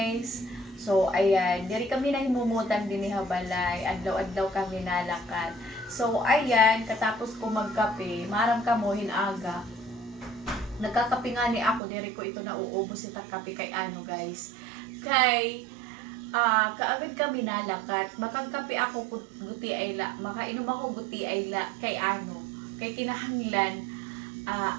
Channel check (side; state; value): left; drops out; at 11.8 s